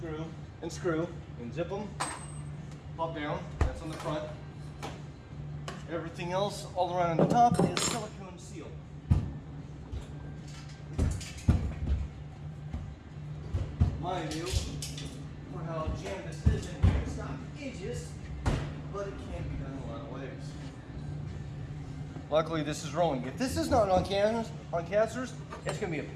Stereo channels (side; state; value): both; identical; correlation 1.00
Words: and screw, and zip them, pop down, that's on the front. Everything else all around on the top is silicone seal. Mind you, for how jammed this is in here, it's not edges, but it can be done a lot of ways. Luckily this is rolling. If this is not on casters, it's going to be a